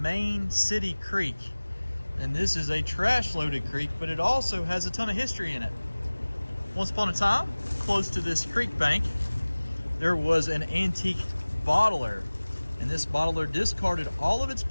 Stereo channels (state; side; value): inverted; both; correlation -1.00